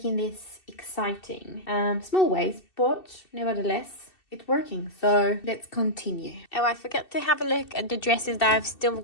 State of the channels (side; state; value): right; late; 2.7 ms